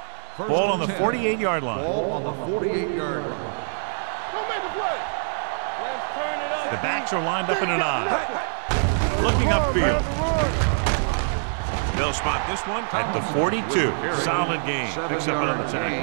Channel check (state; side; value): silent; left; 61 dB below the other